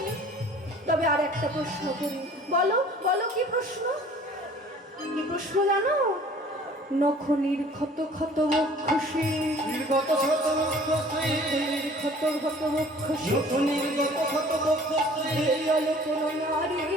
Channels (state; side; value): normal; both; correlation 0.50